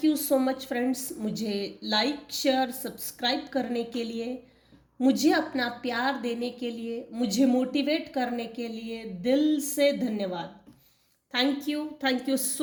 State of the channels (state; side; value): identical; both; correlation 1.00